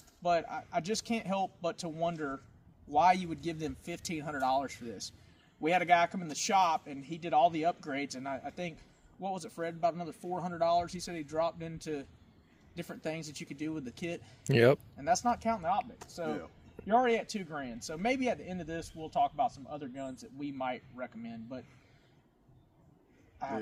But I just can't help but to wonder why you would give them $1,500 for this. We had a guy come in the shop, and he did all the upgrades. And I think, what was it, Fred, about another $400? He said he dropped into different things that you could do with the kit. Yep. And that's not counting the optics. So you're already at $2,000. So maybe at the end of this, we'll talk about some other guns that we might recommend. But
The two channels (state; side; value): identical; both; correlation 1.00